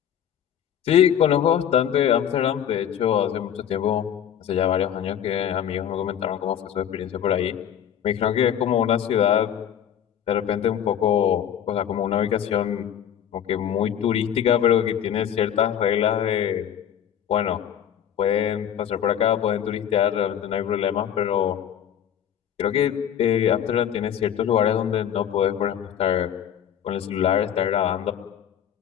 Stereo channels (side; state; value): right; quieter; 9.6 dB